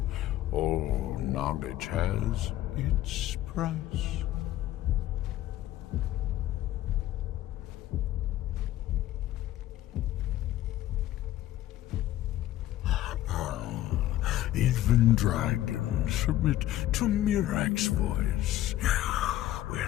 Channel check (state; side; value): quieter; right; 13.9 dB